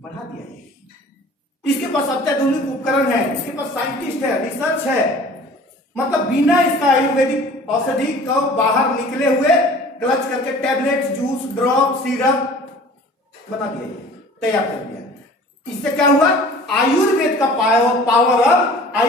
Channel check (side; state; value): both; normal; correlation 0.46